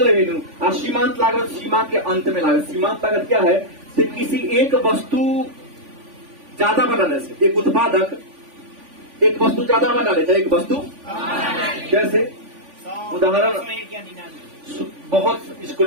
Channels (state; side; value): late; left; 3.5 ms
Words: रेवेन्यू। और सीमांत लागत सीमा के अंत में लागत। सीमांत लागत क्या है? तो किसी एक वस्तु ज्यादा बनाने से, एक उत्पादक एक वस्तु ज्यादा बना लेता है। एक वस्तु जैसे उदाहरण, बहुत इसको